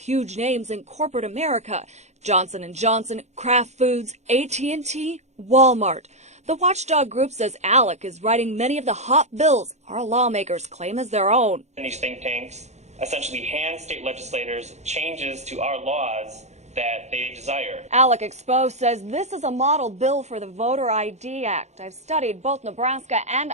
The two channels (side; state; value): left; late; 0.33 ms